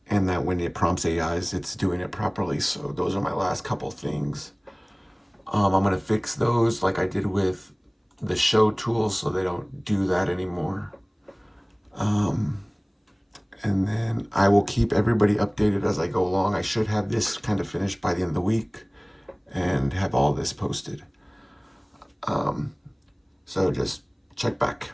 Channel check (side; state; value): both; identical; correlation 1.00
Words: And that when it prompts AIs, it's doing it properly. So those are my last couple things. I'm gonna fix those like I did with the show tools, so they don't do that anymore. And then I will keep everybody updated as I go along. I should have this kind of finished by the end of the week and have all this posted. So just check back.